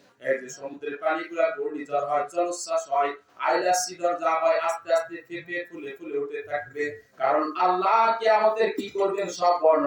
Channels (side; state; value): both; identical; correlation 1.00